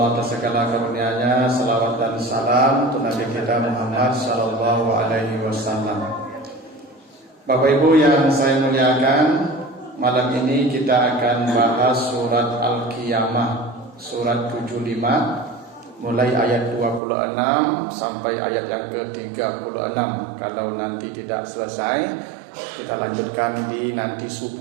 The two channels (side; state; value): left; drops out; at 17.0 s